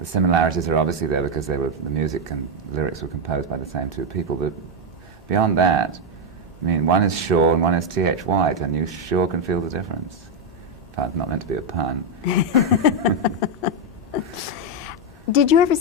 similarities are obviously there because the music and lyrics were composed by the same two people, but beyond that, I mean, one is Shaw and one is T.H. White, and you sure can feel the difference. Pun's not meant to be a pun. Did you ever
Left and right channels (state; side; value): normal; both; correlation 0.03